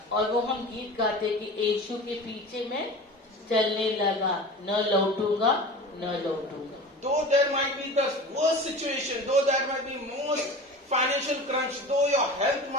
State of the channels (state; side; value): normal; both; correlation 0.35